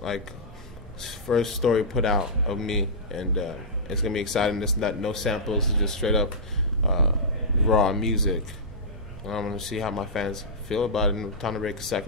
story put out of me, and it's gonna be exciting. It's not no samples. It's just straight up raw music. And I'm gonna see how my fans feel about it, and time to make a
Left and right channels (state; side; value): normal; both; correlation -0.15